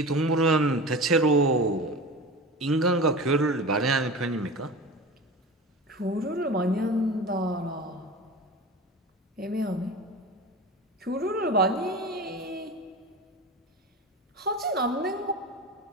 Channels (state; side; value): normal; both; correlation 0.31